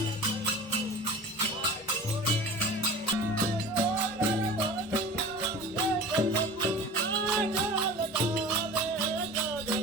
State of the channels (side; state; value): both; normal; correlation 0.37